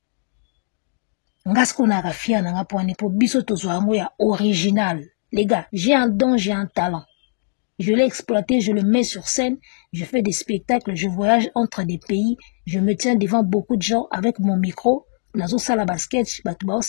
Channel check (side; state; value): right; silent; digital silence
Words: Ngasko na gafia na ngapone po biso tozo yango ya original. Les gars, j'ai un don, j'ai un talent. Je l'ai exploité, je le mets sur scène, je fais des spectacles, je voyage entre des pays, je me tiens devant beaucoup de gens avec mon micro, nazo sala basket, batu bao